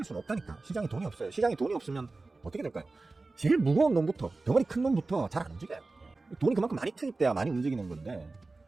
수는 없다니까. 시장에 돈이 없어요. 시장에 돈이 없으면 어떻게 될까요? 제일 무거운 놈부터, 덩어리 큰 놈부터 잘 안 움직여요. 돈이 그만큼 많이 투입돼야 많이 움직이는 건데,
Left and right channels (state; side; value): quieter; left; 3.5 dB